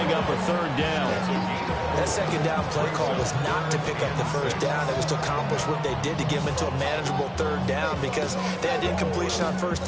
up a third down. That second down play call was not to pick up the first down. It was to accomplish what they did to get them into a manageable third down because they had incompletion on first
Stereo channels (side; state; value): both; identical; correlation 1.00